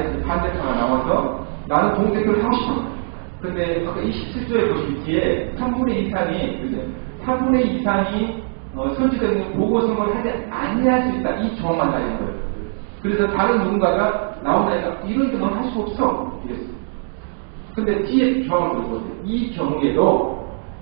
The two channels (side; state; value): left; silent; 65 dB below the other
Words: 반대파가 나와서 나는 동대표를 하고 싶어. 근데 아까 27조에 보시면 뒤에 3분의 2 이상이 설치되는 보고선거를 하지 아니할 수 있다. 이 조항만 달린 거예요. 그래서 다른 누군가가 나온다니까 이런 경우는 할 수 없어. 이랬어요. 근데 뒤에 조항을 보세요. 이 경우에도